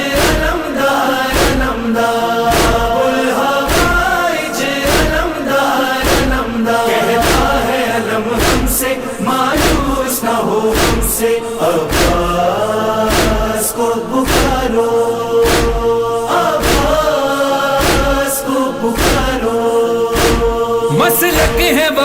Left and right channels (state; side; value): identical; both; correlation 1.00